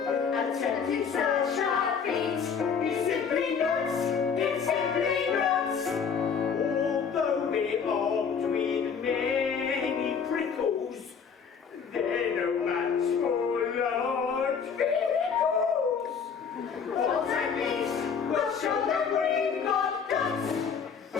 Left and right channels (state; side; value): quieter; right; 6.4 dB